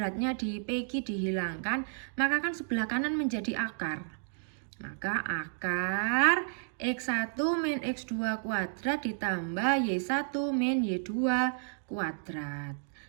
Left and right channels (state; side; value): silent; left; digital silence